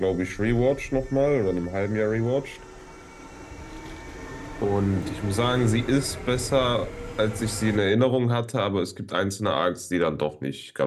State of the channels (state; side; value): identical; both; correlation 1.00